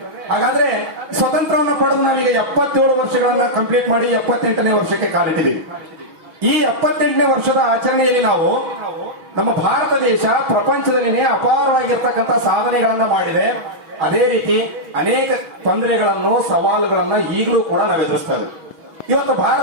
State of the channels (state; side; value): late; left; 6.2 ms